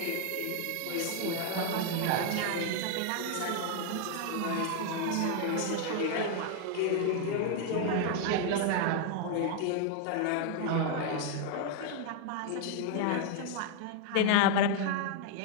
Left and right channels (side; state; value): both; different; correlation 0.00